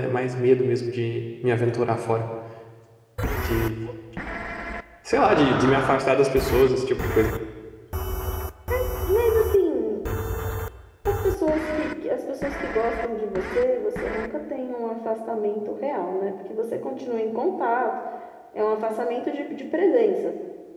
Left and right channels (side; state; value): both; identical; correlation 1.00